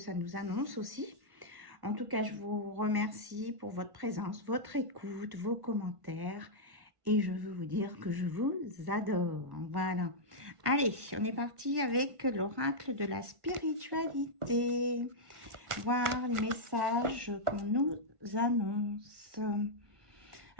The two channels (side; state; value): left; late; 1.5 ms